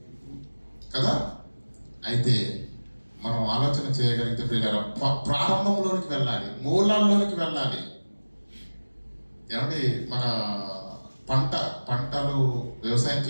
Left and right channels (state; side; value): inverted; both; correlation -1.00